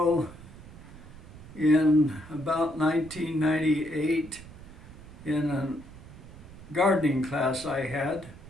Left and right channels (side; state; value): right; noise; rumble, 17 dB below the sound